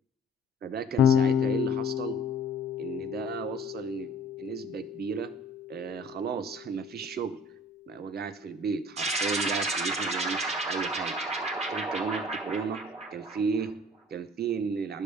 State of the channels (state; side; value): normal; both; correlation 0.50